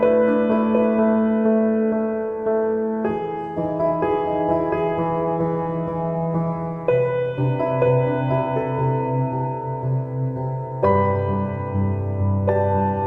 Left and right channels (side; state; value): both; identical; correlation 1.00